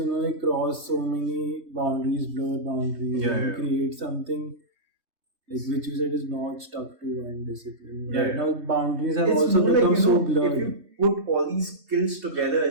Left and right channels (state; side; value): late; left; 3.2 ms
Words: like cross so many boundaries, blur boundaries, and create something like which you said is not stuck to one discipline. Yeah, Right now, boundaries have It's also more become like, so blurred. if you put all these skills together